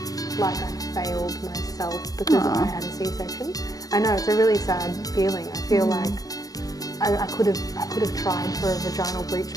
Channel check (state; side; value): late; right; 0.18 ms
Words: like I failed myself because I had a C-section. I know, it's a really sad feeling. I feel like I could have tried for a vaginal breech